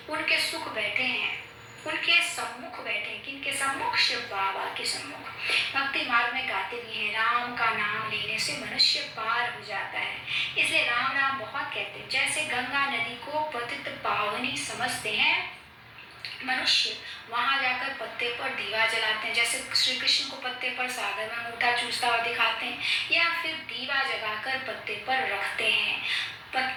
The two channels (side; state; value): both; identical; correlation 1.00